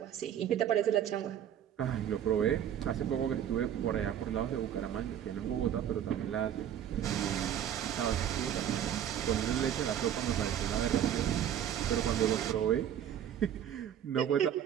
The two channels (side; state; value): left; quieter; 9.9 dB